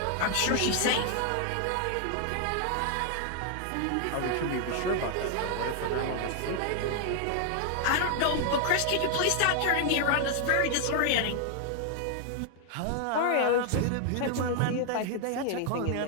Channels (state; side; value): different; both; correlation 0.00